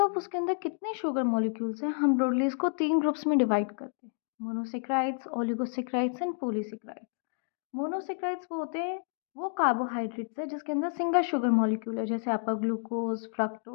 उसके अंदर कितने sugar molecules हैं हम broadly इसको तीन ग्रुप्स में डिवाइड करते हैं, monosaccharides, oligosaccharides and polysaccharides. Monosaccharides वो होते हैं वो कार्बोहाइड्रेट्स है जिसके अंदर सिंगल शुगर मॉलिक्यूल है, जैसे आपका ग्लूकोज,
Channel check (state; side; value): silent; right; 58 dB below the other